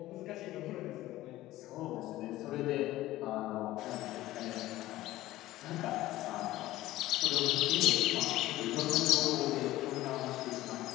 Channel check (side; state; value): right; quieter; 16.1 dB